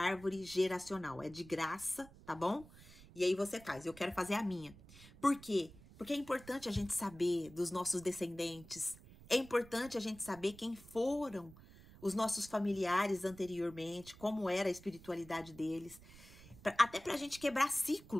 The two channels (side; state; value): right; noise; rumble, 20 dB below the sound